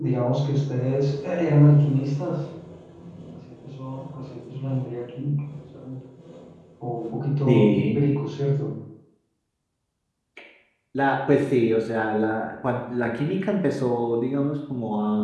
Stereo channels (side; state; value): both; identical; correlation 1.00